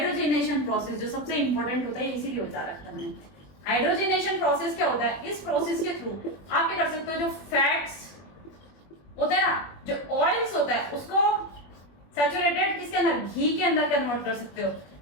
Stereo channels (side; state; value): right; late; 21 ms